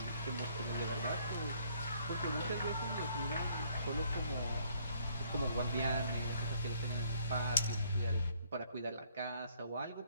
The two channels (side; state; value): both; inverted; correlation -0.64